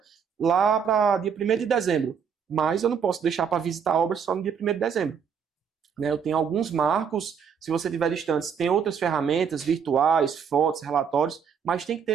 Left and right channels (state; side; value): quieter; left; 7.0 dB